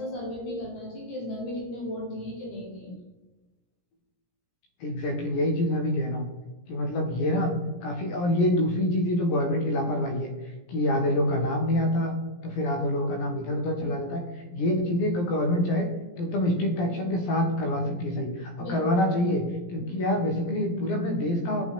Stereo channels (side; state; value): right; late; 17 ms